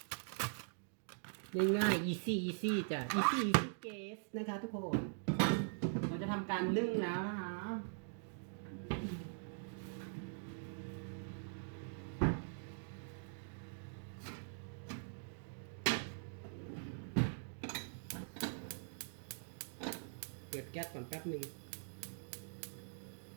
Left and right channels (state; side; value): silent; left; digital silence